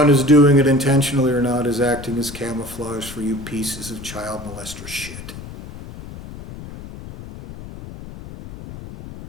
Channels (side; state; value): left; noise; rumble, 13 dB below the sound